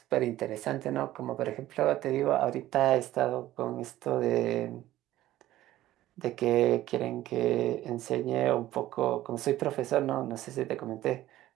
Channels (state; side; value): quieter; left; 14.7 dB